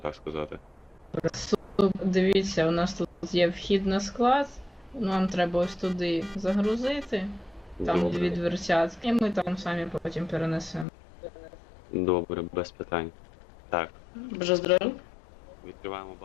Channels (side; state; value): right; drops out; at 10.9 s